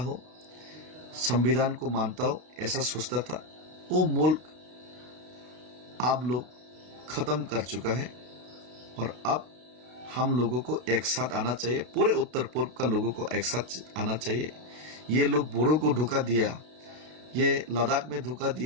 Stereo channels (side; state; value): left; late; 32 ms